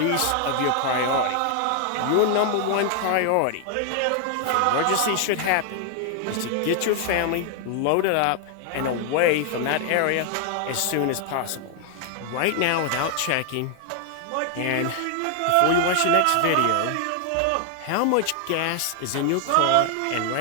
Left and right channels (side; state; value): both; different; correlation 0.00